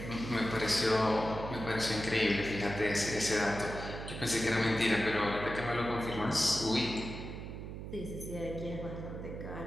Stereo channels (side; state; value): right; noise; hum, 8 dB below the sound